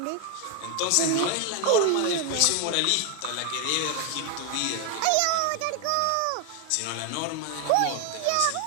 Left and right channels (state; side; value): different; both; correlation 0.01